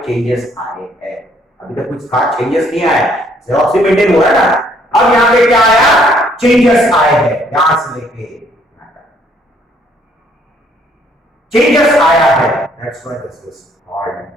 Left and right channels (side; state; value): both; normal; correlation 0.65